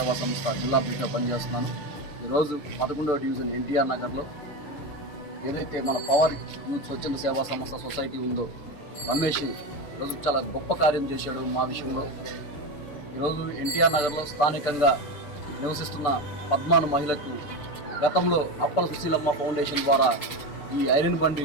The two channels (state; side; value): late; right; 6.8 ms